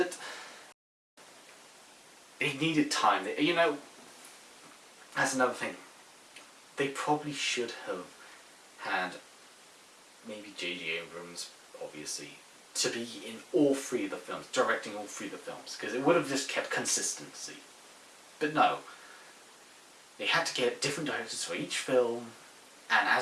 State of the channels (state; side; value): identical; both; correlation 1.00